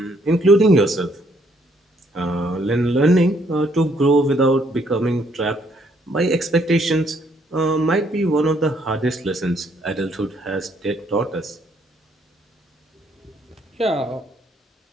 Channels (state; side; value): normal; both; correlation 0.69